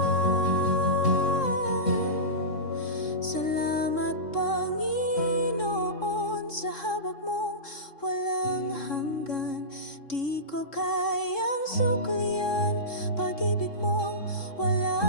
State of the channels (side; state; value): right; late; 3.7 ms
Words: Salamat, Panginoon, sa habag mong walang hanggan. Di ko kayang suklian, pag-ibig mong